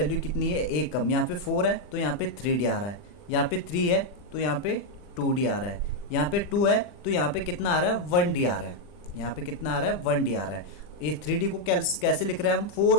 कितनी है, एक कम। यहाँ पे 4 है तो यहाँ पे 3d आ रहा है, यहाँ पे 3 है तो यहाँ पे 2d आ रहा है, यहाँ पे 2 है तो यहाँ पे कितना आ रहा है, 1d आ रहा है। यहाँ पे कितना आ रहा है, 1d आ रहा है। ये 3d को कैसे लिख रहे हैं हम, 4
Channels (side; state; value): right; late; 40 ms